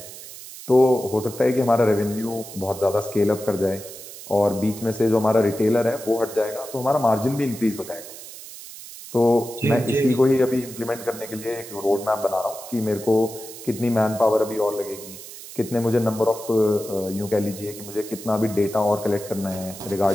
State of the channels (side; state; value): right; noise; hiss, 14 dB below the sound